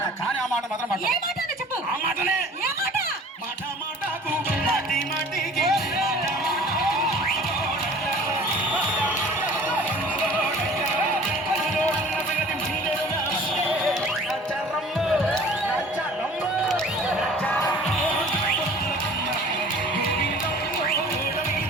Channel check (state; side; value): normal; both; correlation 0.47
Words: కానీ ఆ మాట మాత్రం ఆ మాటనే మాట మాటకు మాటి మాటికి